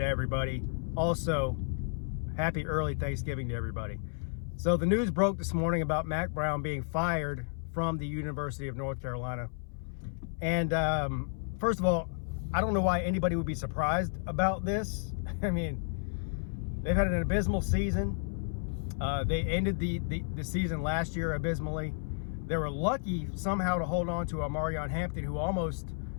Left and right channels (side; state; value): right; silent; 56 dB below the other